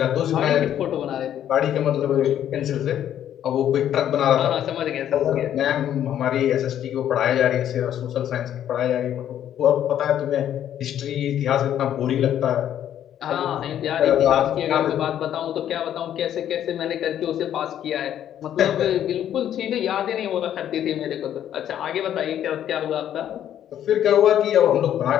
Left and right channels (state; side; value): quieter; right; 10.6 dB